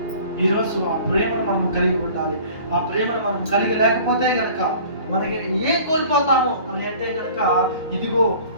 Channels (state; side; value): inverted; both; correlation -0.47